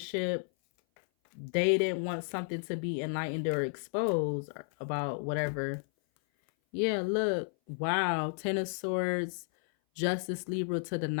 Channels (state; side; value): silent; right; 56 dB below the other